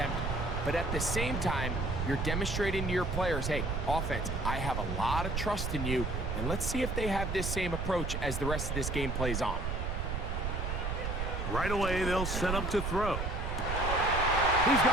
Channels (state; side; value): noise; right; rumble, 2 dB below the sound